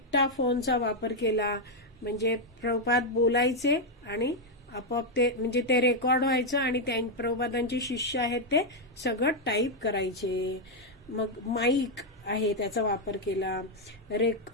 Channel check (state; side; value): normal; both; correlation 0.00